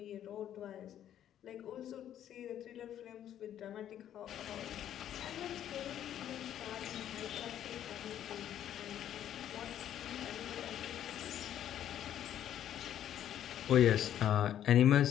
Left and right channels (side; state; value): right; quieter; 10.8 dB